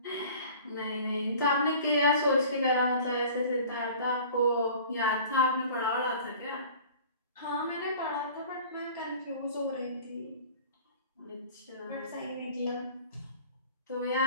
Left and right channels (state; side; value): inverted; both; correlation -0.45